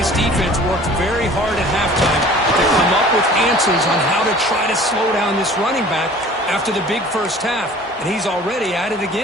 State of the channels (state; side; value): normal; both; correlation 0.47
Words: defense worked very hard at halftime to come up with answers on how to try to slow down this running back after the big first half, and he's already at it